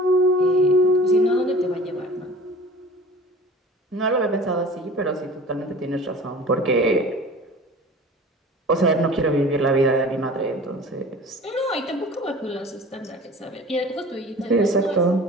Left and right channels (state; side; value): normal; both; correlation 0.42